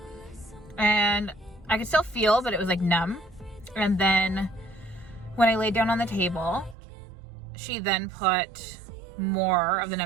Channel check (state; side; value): drops out; left; at 6.8 s